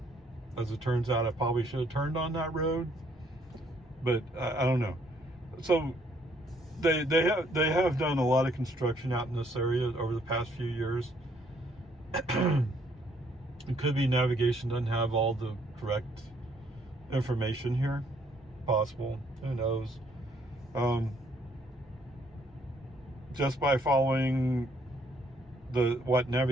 As it turns out, I probably should have turned on that road, but I don't know. So they have done a lot of construction out in this area over the past few years. It could be navigation doesn't have all the correct information here. Possible. Who knows? Just by following what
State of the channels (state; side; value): normal; both; correlation 0.67